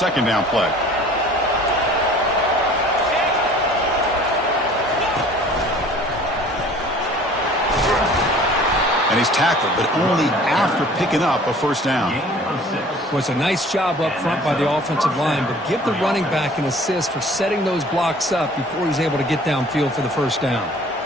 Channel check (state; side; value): normal; both; correlation 0.49